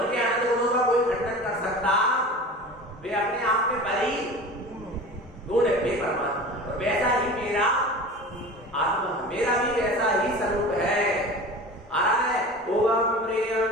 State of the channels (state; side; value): normal; both; correlation 0.35